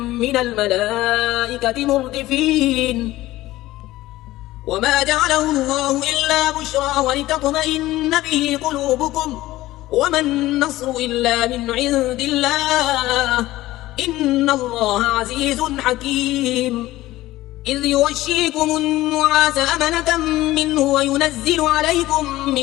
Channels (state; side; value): quieter; right; 16.7 dB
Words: من الملائكة مردفين. وما جعله الله إلا بشرى ولتطمئن به قلوبكم وما النصر إلا من عند الله إن الله عزيز حكيم. إذ يغشيكم النعاس أمنة منه وينزل عليكم